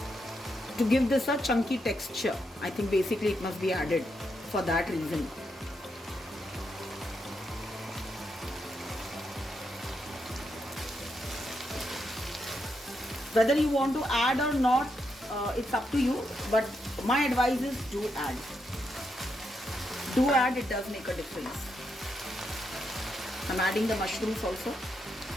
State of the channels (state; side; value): normal; both; correlation 0.81